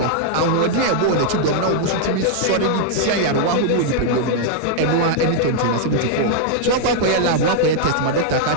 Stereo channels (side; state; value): both; different; correlation -0.01